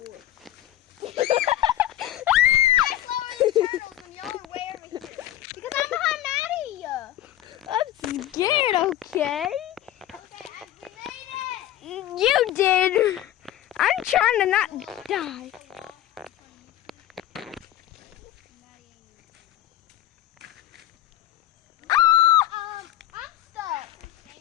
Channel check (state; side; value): quieter; right; 13.1 dB